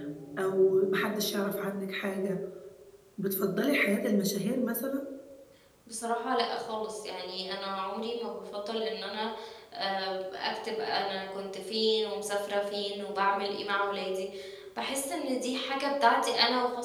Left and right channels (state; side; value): identical; both; correlation 1.00